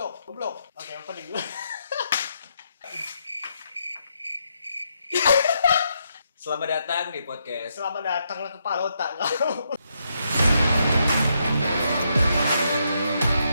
Oke, opening dulu. Selamat datang di podcast. Selamat datang ke Palota kau.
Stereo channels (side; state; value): both; inverted; correlation -0.79